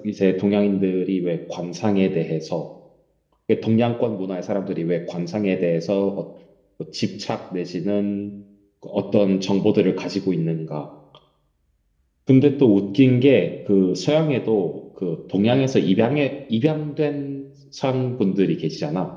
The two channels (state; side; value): identical; both; correlation 1.00